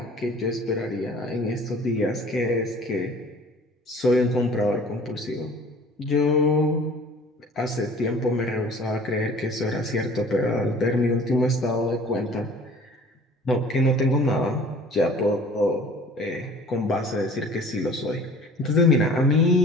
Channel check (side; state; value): both; normal; correlation 0.48